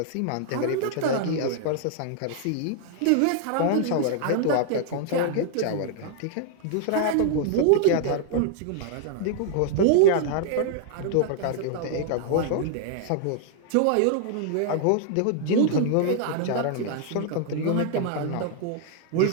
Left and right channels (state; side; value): different; both; correlation -0.01